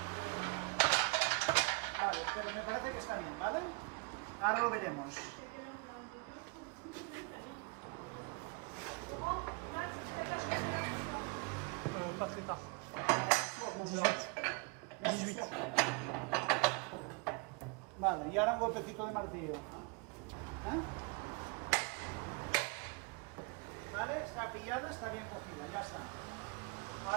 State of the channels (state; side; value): quieter; left; 30.8 dB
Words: Vale, pero me parece que está bien, ¿vale? Ahora lo veremos. Pas très tard. 18. Vale, y ahora un golpecito de martillo. Vale, está pillada, está bien cogida, ya está.